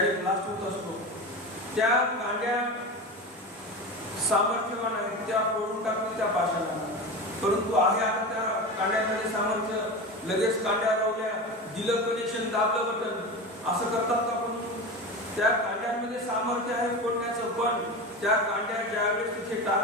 ब्लास्ट होत असतो, त्या कांड्या सामर्थ्यवान आहेत, त्या फोडून टाकतील त्या पाशाला. परंतु आहे आता त्या कांड्यामध्ये सामर्थ्य, लगेच कांड्या लावल्या, दिलं कनेक्शन, दाबलं बटन, असं करतात का. पण त्या कांड्यांमध्ये सामर्थ्य आहे फोडण्याचं, पण त्या कांड्या ज्यावेळेस तिथे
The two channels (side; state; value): both; normal; correlation 0.25